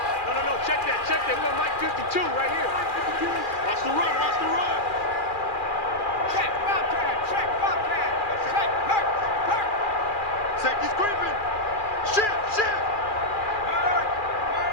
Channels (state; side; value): late; right; 2.4 ms